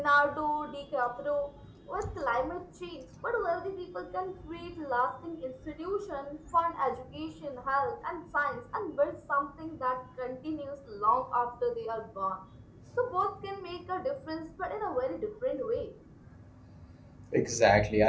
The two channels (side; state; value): both; identical; correlation 1.00